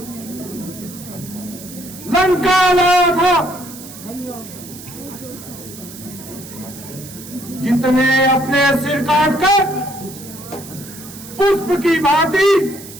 लंका लाया था। जितने अपने सिर काटकर पुष्प की भांति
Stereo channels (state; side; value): noise; right; hiss, 15 dB below the sound